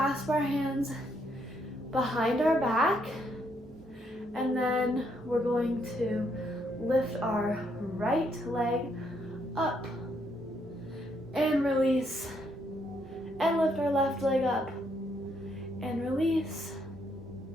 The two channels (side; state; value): both; normal; correlation 0.74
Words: our hands behind our back, and then we're going to lift our right leg up and release, and lift our left leg up and release,